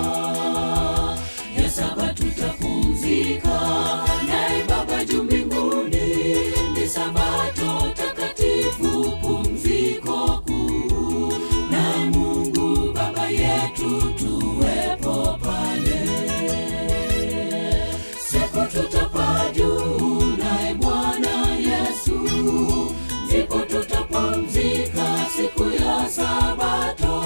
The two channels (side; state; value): both; inverted; correlation -1.00